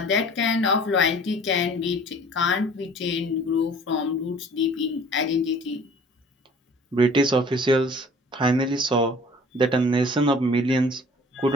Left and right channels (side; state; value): both; normal; correlation 0.49